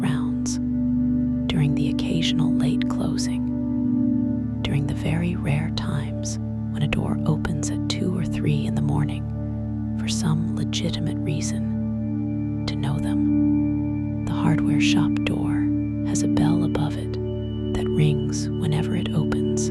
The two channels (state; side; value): identical; both; correlation 1.00